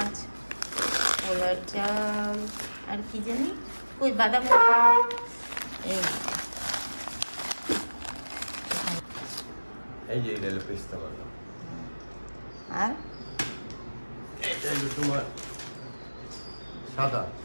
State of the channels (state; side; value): inverted; both; correlation -1.00